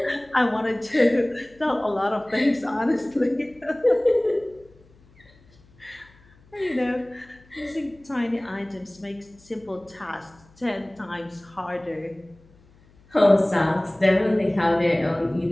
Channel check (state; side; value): noise; left; hum, 28 dB below the sound